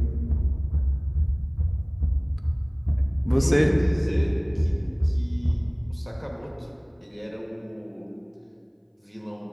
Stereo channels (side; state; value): both; identical; correlation 1.00